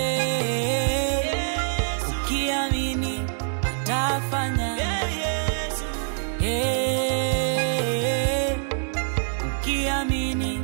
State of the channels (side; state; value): left; silent; digital silence